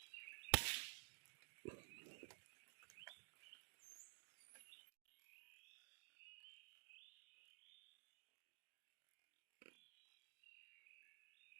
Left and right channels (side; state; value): left; silent; digital silence